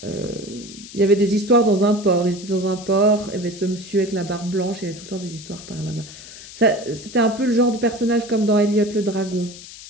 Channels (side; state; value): left; noise; hiss, 16 dB below the sound